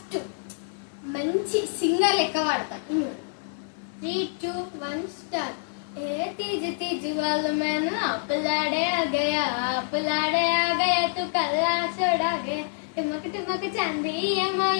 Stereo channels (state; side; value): silent; right; 60 dB below the other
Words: మంచి సింగర్ లెక్క పాడతా. 3, 2, 1 స్టార్ట్. ए तीज तीज वाल मैंने अपलाड़े आ गया तू कल्ला छोड़ा गया टुमक टुमक चांदी